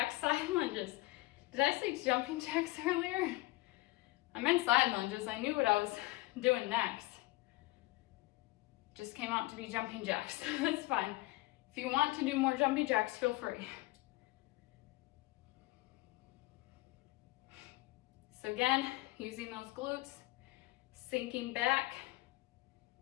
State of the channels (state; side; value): quieter; right; 20.5 dB